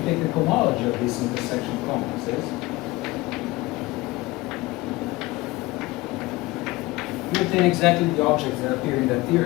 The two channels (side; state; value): right; quieter; 20.5 dB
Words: take the cohomology of these intersection complexes, you obtain exactly the objects that appear in that